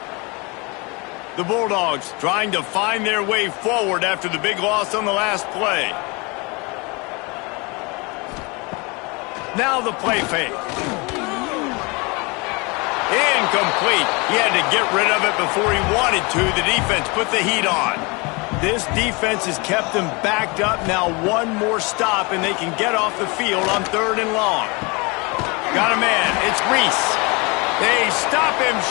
The Bulldogs trying to find their way forward after the big loss on the last play. Now the play fake. Incomplete. He had to get rid of it before he wanted to. The defense put the heat on. This defense has kept them backed up. Now one more stop, and they can get off the field on 3rd and long. Got a man. It's Reese. They stop him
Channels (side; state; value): right; quieter; 28.2 dB